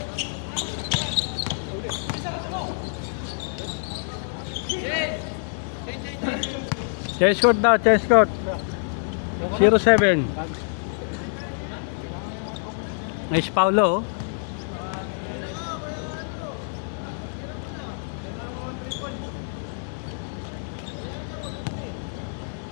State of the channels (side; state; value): right; silent; digital silence